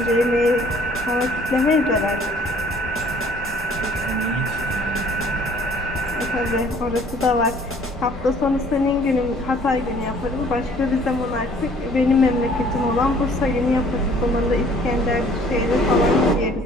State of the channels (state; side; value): normal; both; correlation 0.57